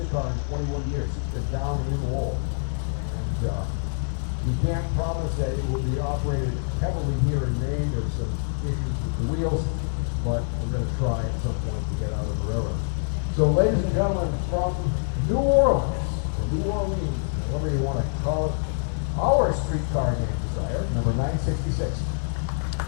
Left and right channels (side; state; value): right; silent; digital silence